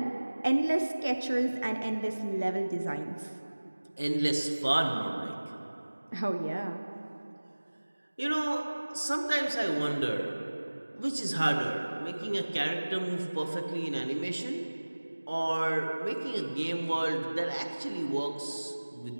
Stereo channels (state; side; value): inverted; both; correlation -1.00